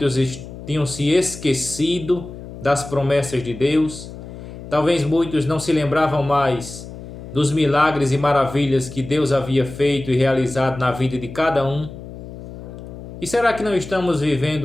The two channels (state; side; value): noise; left; hum, 13 dB below the sound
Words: tinham se esquecido das promessas de Deus, Talvez muitos não se lembravam mais dos milagres e maravilhas que Deus havia feito e realizado na vida de cada um. E será que não estamos